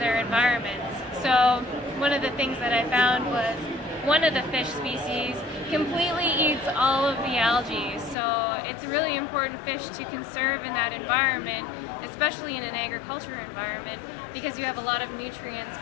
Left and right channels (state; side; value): drops out; right; at 8.2 s